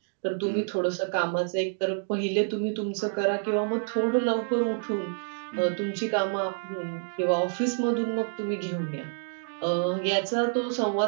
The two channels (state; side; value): silent; left; digital silence